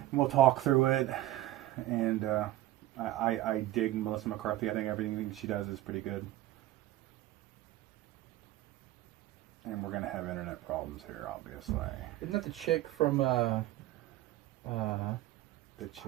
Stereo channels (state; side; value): quieter; left; 15.4 dB